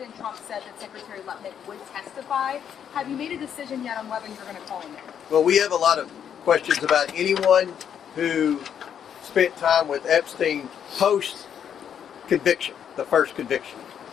Trump said that Secretary Lutnick would testify. Have you made a decision yet on whether you're going to call him in? Well, we have a lot of questions about anyone who spent time with Epstein post conviction, the first conviction.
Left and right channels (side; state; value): right; quieter; 8.6 dB